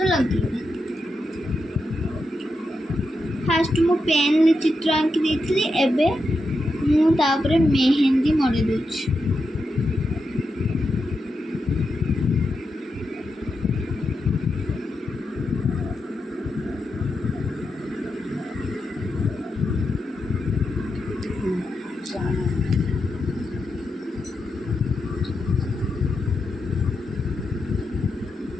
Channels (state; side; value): normal; both; correlation 0.86